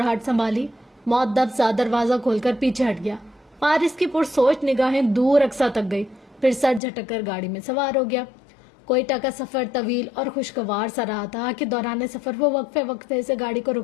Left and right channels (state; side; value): drops out; right; at 6.8 s